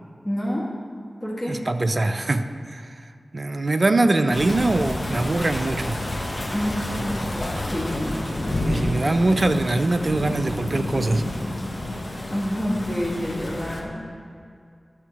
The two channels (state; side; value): normal; both; correlation 0.96